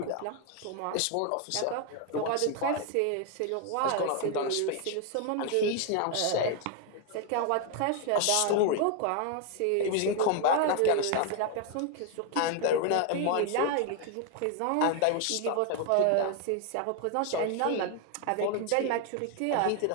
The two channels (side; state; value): both; different; correlation 0.00